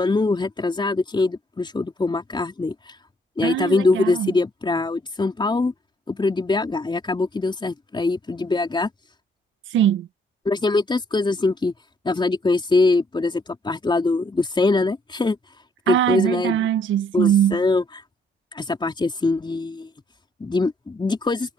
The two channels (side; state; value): both; normal; correlation 0.67